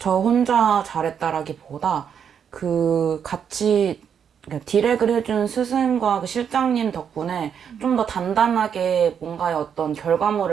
혼자 잘했다라기보다 그 같이 디렉을 해준 스승과 그 실장님 덕분에 좀 더 단단하게 뭔가의 어떤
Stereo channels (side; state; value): left; quieter; 7.8 dB